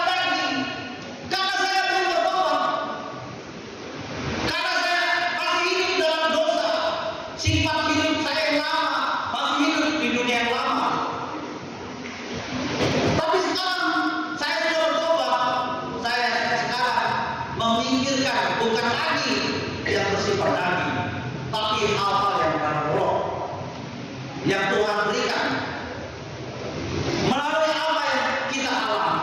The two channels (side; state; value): both; identical; correlation 1.00